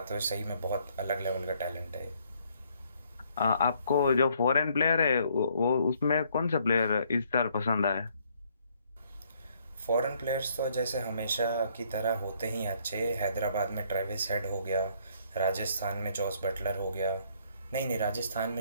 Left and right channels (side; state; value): both; inverted; correlation -0.67